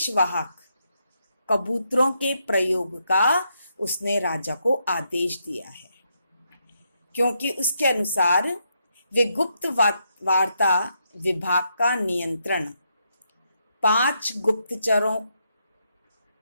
कबूतरों के प्रयोग का उसने राजा को आदेश दिया है, क्योंकि उसके अनुसार वे गुप्त वार्ता विभाग का नियंत्रण 5 गुप्तचरों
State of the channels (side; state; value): both; inverted; correlation -0.79